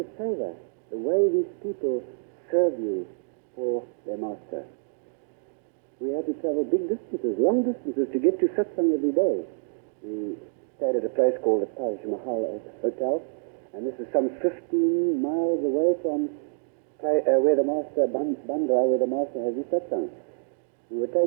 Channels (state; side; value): silent; left; digital silence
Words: favor, the way these people serve you for their Master. We had to travel big distances, long distances, to get to Satsang every day. We stayed at a place called the Taj Mahal Hotel, and this is some 15 miles away from where the Master, Bandra, where the Master has his Satsang. We were